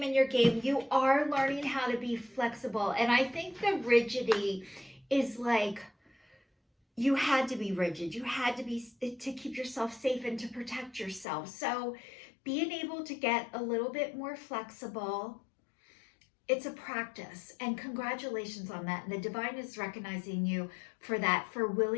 in your game. You are learning how to be flexible. And I think the rigidity is like you had to be rigid. You had to be to keep yourself safe and to protect yourself. So, being able to get a little bit more flexible, it's a practice, and congratulations on that. And the divine is recognizing you for that, for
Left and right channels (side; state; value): right; drops out; at 11.2 s